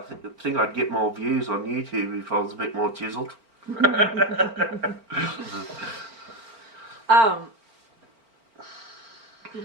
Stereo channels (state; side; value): late; left; 4.4 ms